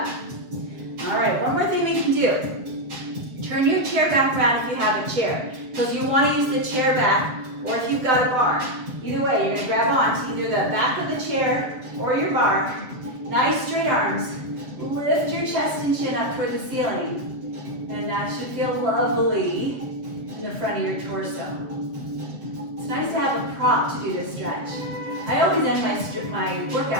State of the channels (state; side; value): late; left; 7.8 ms